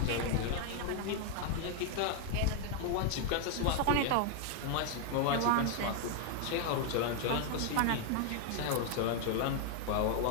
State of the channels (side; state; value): both; different; correlation 0.01